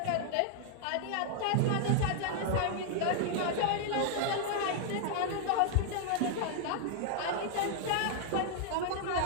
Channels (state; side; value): different; both; correlation 0.00